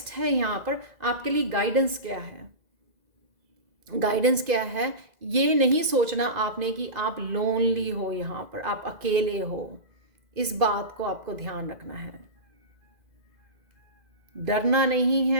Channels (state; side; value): late; left; 2.0 ms